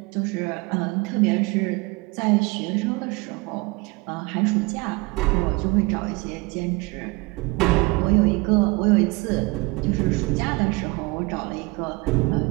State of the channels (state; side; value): quieter; left; 25.2 dB